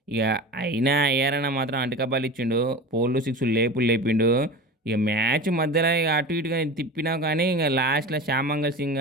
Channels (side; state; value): both; normal; correlation 0.31